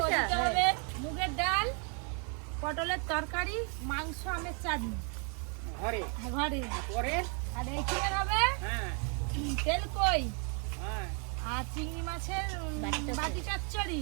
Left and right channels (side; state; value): left; quieter; 38.6 dB